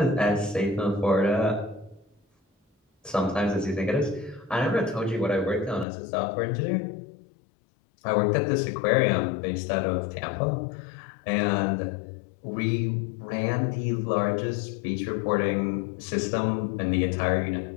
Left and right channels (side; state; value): right; drops out; at 5.9 s